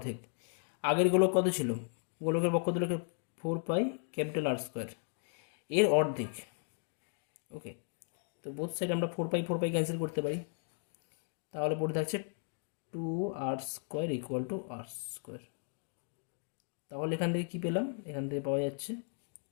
আগের গোলক কত ছিল, গোলকের বক্ষতলের 4 পাই ক্যাপিটাল আর স্কোয়ার, এর অর্ধেক। ওকে, তো বোথ সাইড আমরা 4 পাই ক্যান্সেল করতে পারি, তাহলে পড়ে থাকছে 2r² ইকুয়াল টু r²। তাহলে এখান থেকে কী পেলাম, এখান থেকে পাওয়া যাচ্ছে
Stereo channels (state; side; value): silent; right; 54 dB below the other